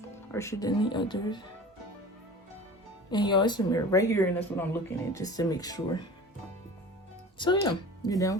Harsher than the others. And y'all, it's a mirror right here, and that's what I'm looking at, just to make sure. So yeah, you're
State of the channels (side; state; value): both; normal; correlation 0.38